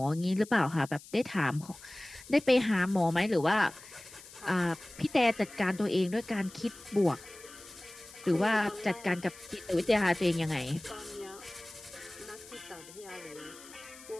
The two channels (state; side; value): noise; left; hiss, 19 dB below the sound